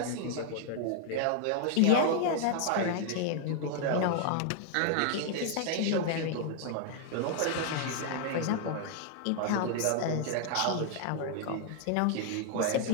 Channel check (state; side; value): different; both; correlation 0.00